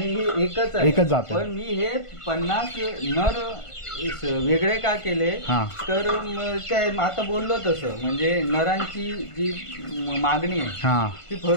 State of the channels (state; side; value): late; right; 1.5 ms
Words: हे एकच जात. पण मी हे 50 नर वेगळे का केले हा. तर काय आता बोललो तसं म्हणजे नरांची जी मागणी आहे हा ती